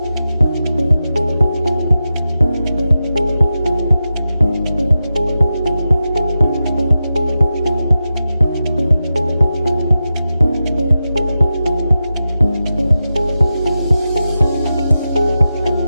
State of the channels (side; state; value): both; inverted; correlation -0.91